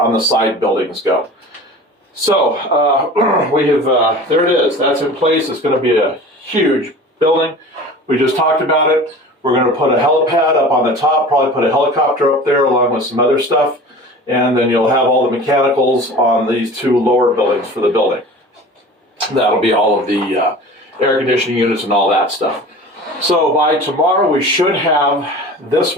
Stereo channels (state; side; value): normal; both; correlation 0.39